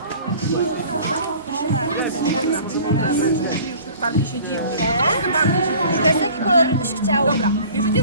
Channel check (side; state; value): both; inverted; correlation -0.46